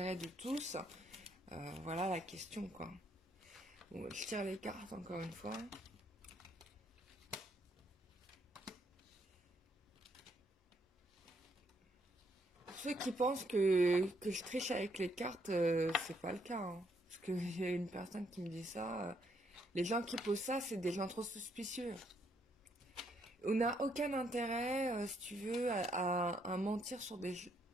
de tous? Voilà la question, quoi. Bon, je tire les cartes encore une fois. Ceux qui pensent que je triche avec les cartes, c'est pas le cas, hein. Parce qu'il y a une personne qui me dit ça. Les gens qui posent ça, c'est des gens trop suspicieux. On n'a aucun intérêt, si tu veux, à mentir sur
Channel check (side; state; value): both; normal; correlation 0.72